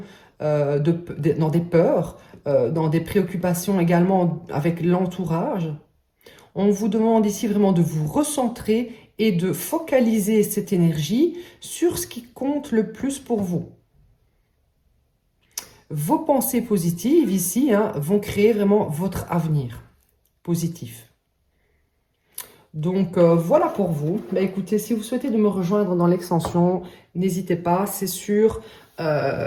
dans des peurs, dans des préoccupations également avec l'entourage. On vous demande ici vraiment de vous recentrer et de focaliser cette énergie sur ce qui compte le plus pour vous. Vos pensées positives ici vont créer vraiment votre avenir positif. Donc voilà pour vous. Bah, écoutez, si vous souhaitez de me rejoindre dans l'extension, n'hésitez pas, c'est sur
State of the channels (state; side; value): identical; both; correlation 1.00